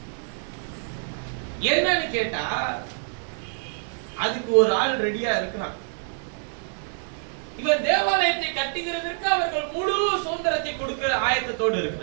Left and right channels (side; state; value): left; silent; 57 dB below the other